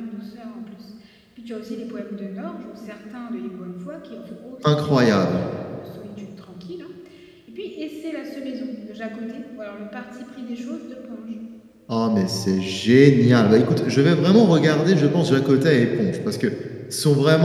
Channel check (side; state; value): both; identical; correlation 1.00